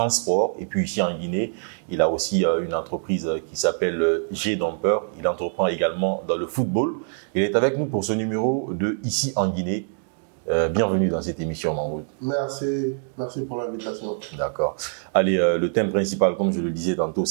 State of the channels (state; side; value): silent; left; digital silence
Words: Et puis ici en Guinée, il a aussi une entreprise qui s'appelle G-Dumper. Il entreprend également dans le football. Il est avec nous pour ce numéro de Ici en Guinée. Bienvenue dans cette émission, Mahmoud. Merci pour l'invitation. D'accord. Allez, le thème principal, comme je le disais tantôt,